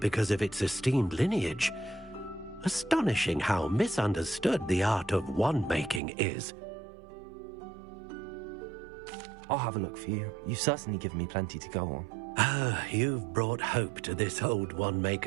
of its esteemed lineage. Astonishing how misunderstood the art of wand-making is. I'll have a look for you. You've certainly given me plenty to go on. Ah, you've brought hope to this old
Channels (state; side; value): drops out; left; at 6.0 s